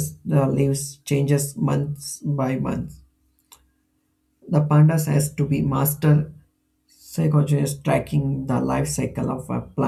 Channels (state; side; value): identical; both; correlation 1.00